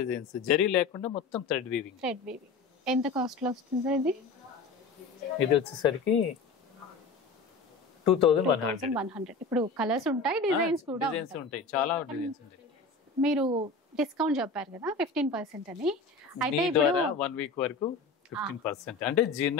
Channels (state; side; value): quieter; right; 4.1 dB